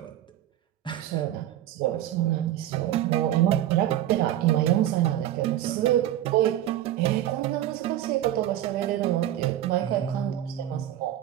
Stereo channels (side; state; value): left; quieter; 12.6 dB